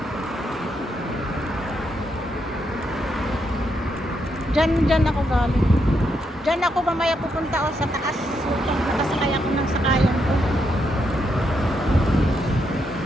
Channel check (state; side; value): normal; both; correlation 0.80